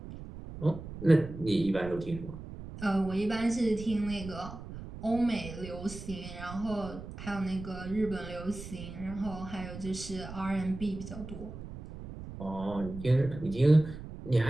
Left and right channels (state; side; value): noise; right; rumble, 11 dB below the sound